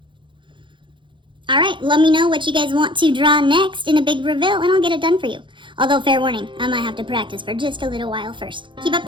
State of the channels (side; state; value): left; late; 0.23 ms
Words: Alright, let me know what you guys want to draw next in a big reveal, and I'll get it done for you. Although, fair warning, I might have to practice for just a little while first. Keep up